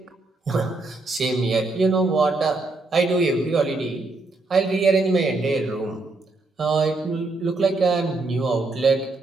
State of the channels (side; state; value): left; quieter; 3.3 dB